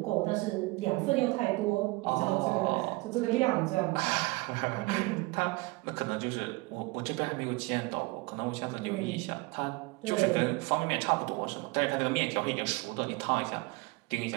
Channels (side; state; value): left; quieter; 24.1 dB